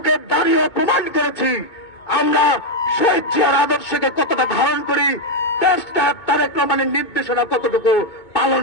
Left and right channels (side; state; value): right; late; 2.2 ms